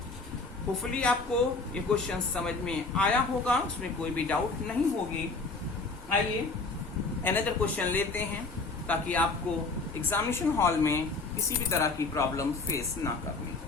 होपफुली आपको ये क्वेश्चन समझ में आया होगा, उसमें कोई भी डाउट नहीं होगी। आइए अनदर क्वेश्चन लेते हैं, ताकि आपको एग्जामिनेशन हॉल में किसी भी तरह की प्रॉब्लम फेस ना करनी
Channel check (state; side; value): quieter; right; 3.7 dB